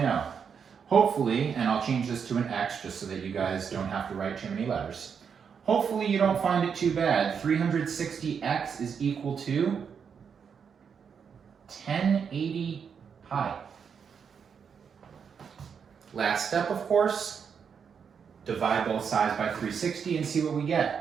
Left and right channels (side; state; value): left; quieter; 6.7 dB